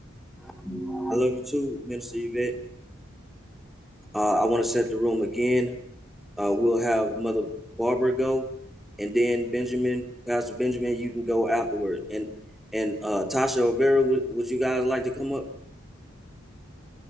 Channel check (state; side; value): normal; both; correlation 0.85